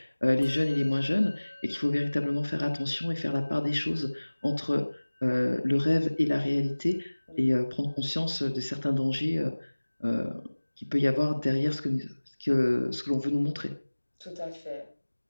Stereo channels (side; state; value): both; inverted; correlation -1.00